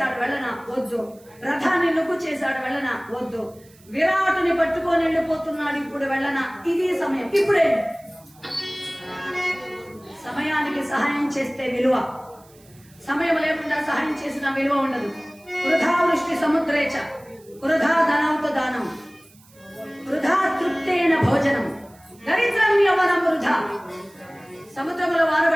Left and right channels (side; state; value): right; noise; hiss, 28 dB below the sound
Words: వెళ్ళనా? వద్దు. రథాన్ని నుగ్గు చేశాడు. వెళ్ళనా? వద్దు. విరాటుని పట్టుకొని వెళ్ళిపోతున్నాడు. ఇప్పుడు వెళ్ళనా? ఇది సమయం. ఇప్పుడే సమయానికి సహాయం చేస్తే విలువ, సమయం లేకుండా సహాయం చేసిన విలువ ఉండదు. వృధా వృష్టి సముద్రేచ వృధా ధనౌత దానం వృధా తృప్తేన భోజనం దరిద్రం యవనం వృధా. సముద్రంలో